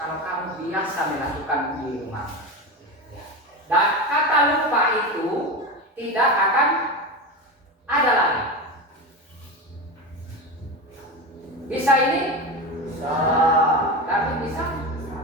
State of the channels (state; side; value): normal; both; correlation 0.21